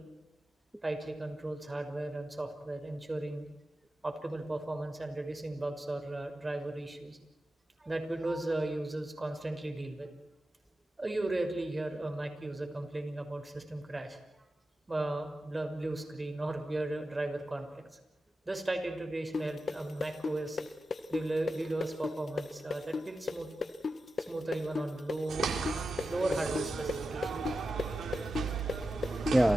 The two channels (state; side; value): normal; both; correlation 0.91